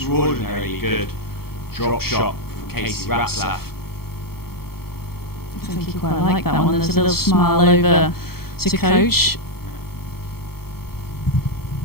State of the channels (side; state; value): right; late; 0.94 ms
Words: good drop shot from Casey Ratzlaff. I think he quite liked that one. There's a little smile over to coach.